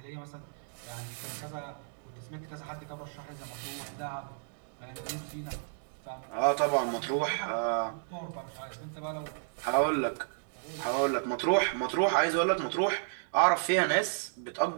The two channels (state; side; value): silent; left; digital silence